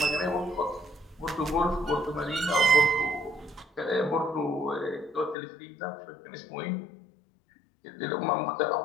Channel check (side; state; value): right; drops out; at 5.4 s